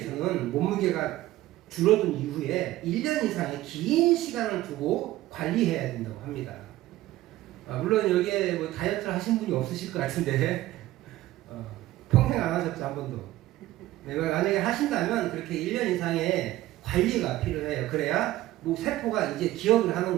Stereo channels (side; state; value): left; quieter; 15.9 dB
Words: 몸무게가 줄어든 이후에 1년 이상의 긴 시간을 두고 관리해야 된다고 합니다. 물론 여기에 뭐 다이어트를 하신 분이 없으실 것 같은데 평생 안 하셨죠, 한 번도. 네, 만약에 하신다면 그렇게 1년 이상의 관리가 필요해요. 그래야 뭐 세포가 이제 기억을 하는